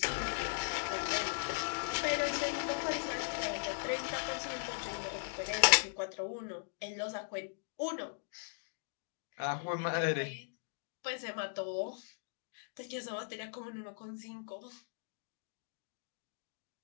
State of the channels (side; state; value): right; silent; digital silence